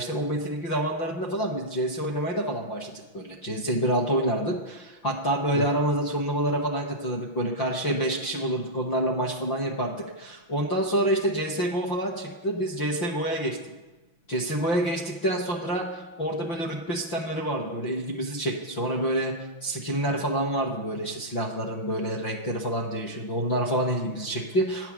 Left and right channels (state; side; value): late; right; 6.0 ms